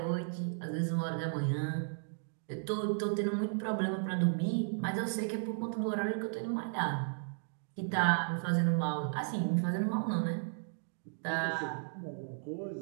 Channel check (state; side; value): silent; left; digital silence